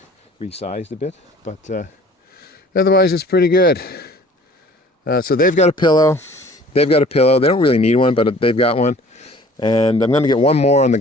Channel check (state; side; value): normal; both; correlation 0.51